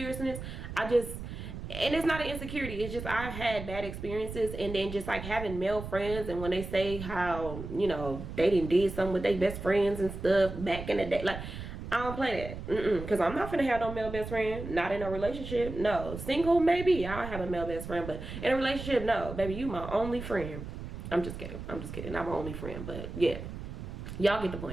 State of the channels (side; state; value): right; noise; rumble, 9 dB below the sound